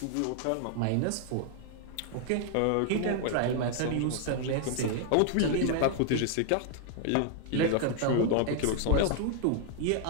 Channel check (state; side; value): different; both; correlation 0.00